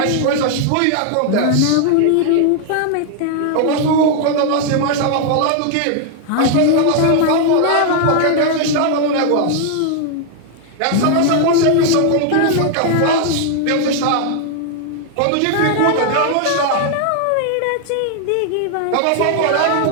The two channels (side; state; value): both; different; correlation 0.00